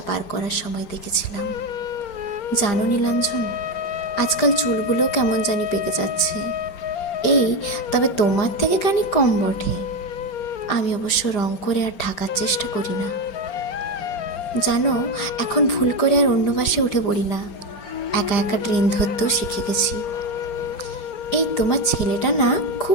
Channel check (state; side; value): late; right; 4.4 ms